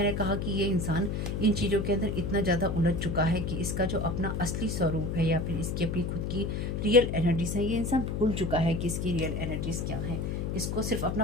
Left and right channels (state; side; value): noise; left; hum, 2 dB below the sound